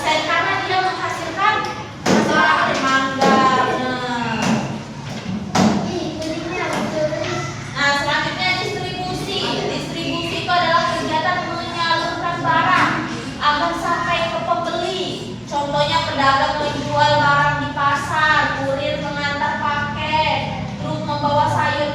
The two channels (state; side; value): identical; both; correlation 1.00